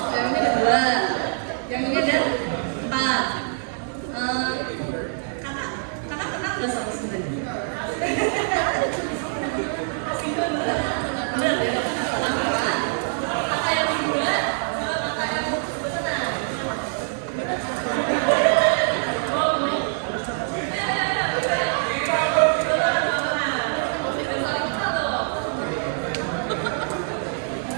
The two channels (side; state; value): left; silent; digital silence